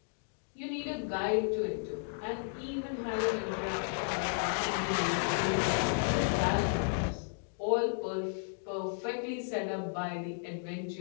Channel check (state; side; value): silent; right; digital silence